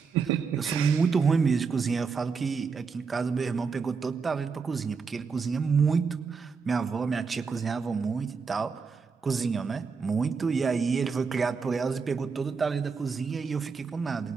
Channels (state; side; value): quieter; left; 5.3 dB